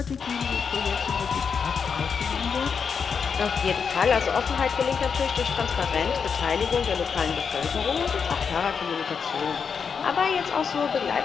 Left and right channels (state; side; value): quieter; right; 6.2 dB